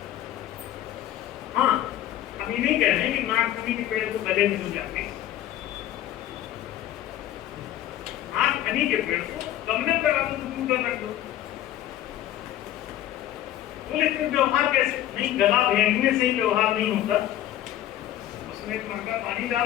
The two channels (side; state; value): right; quieter; 12.6 dB